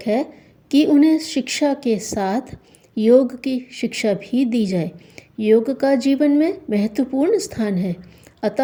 है कि उन्हें शिक्षा के साथ योग की शिक्षा भी दी जाए। योग का जीवन में महत्वपूर्ण स्थान है,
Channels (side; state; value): both; identical; correlation 1.00